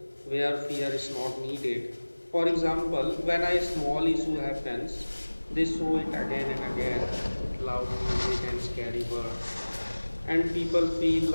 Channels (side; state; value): both; inverted; correlation -1.00